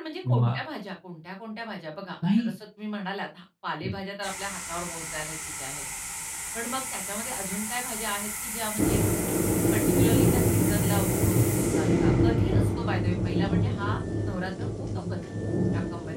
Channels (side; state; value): both; identical; correlation 1.00